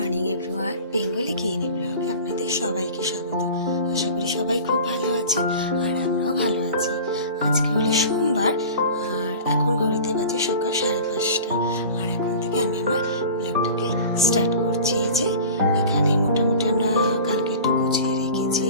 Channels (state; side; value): inverted; both; correlation -0.38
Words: everyone, Bengali গৃহিণী ব্লগে আপনাদের সবাইকে স্বাগত। আশা করি সবাই খুব ভালো আছেন আর আমরাও ভালো আছি। আজকে হলো সোমবার আর এখন ঘড়িতে বাজে সকাল 5:30। আর এখন থেকে আমি আমার ব্লগটাকে স্টার্ট করছি। এই যে এখানে মোটামুটি আমরা কালকে একটু গুছিয়ে রেখেছি